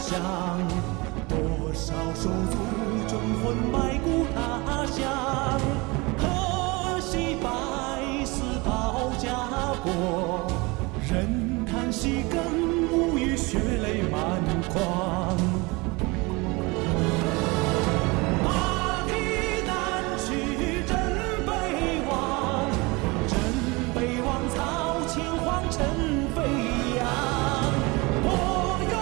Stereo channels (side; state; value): left; quieter; 25.3 dB